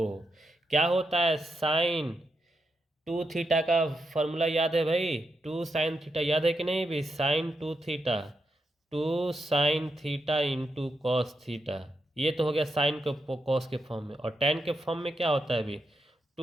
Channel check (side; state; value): both; normal; correlation 0.84